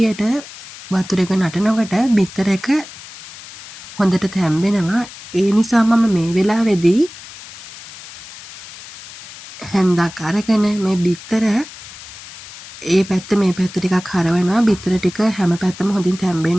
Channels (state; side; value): noise; left; hiss, 16 dB below the sound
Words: වතුර එක නටනකොට බිත්තර එක හොඳට තැම්බෙනවා. ඒ නිසා මම මේ වෙලාවේදී හැන්දක් අරගෙන මේ බිත්තර ඒ පැත්ත මේ පැත්ත ටිකක් හරවනවා. බිත්තර ටික හැම පැත්තම හොඳින්